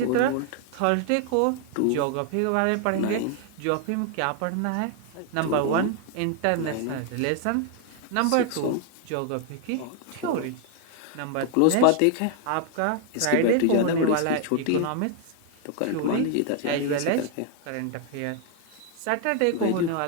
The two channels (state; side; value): different; both; correlation 0.00